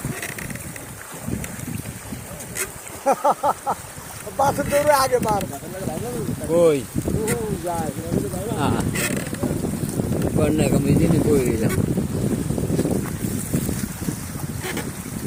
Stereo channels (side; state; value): both; identical; correlation 1.00